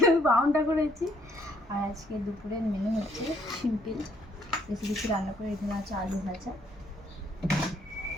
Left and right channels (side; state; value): both; normal; correlation 0.67